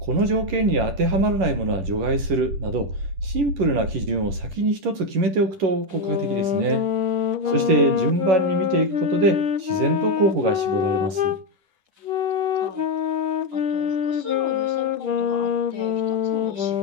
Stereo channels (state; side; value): late; left; 10 ms